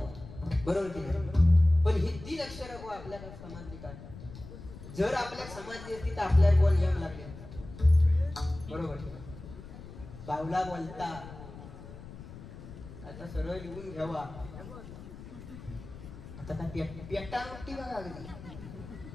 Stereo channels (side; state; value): left; noise; rumble, 14 dB below the sound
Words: बरोबर की नाही पण ही 3 अक्षर आपल्याला समजली काय जर आपल्याला समजली असती तर आपल्याला कोण नियम लागले बरोबर बावला बोलता आता सरळ लिहून घ्यावा आता काय पेटा नोटी बघा